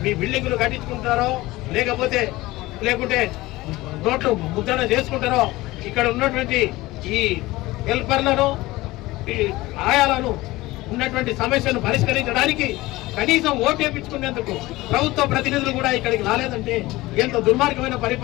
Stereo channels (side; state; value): right; quieter; 19.2 dB